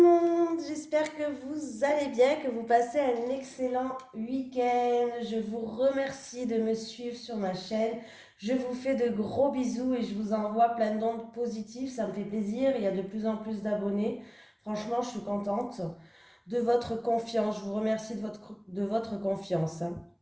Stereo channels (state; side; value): identical; both; correlation 1.00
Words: monde, j'espère que vous allez bien, que vous passez un excellent week-end. Je vous remercie de me suivre sur ma chaîne. Je vous fais de gros bisous et je vous envoie plein d'ondes positives. Ça me fait plaisir, il y a de plus en plus d'abonnés. Franchement, je suis contente de votre confiance. Je vous remercie de votre confiance, hein.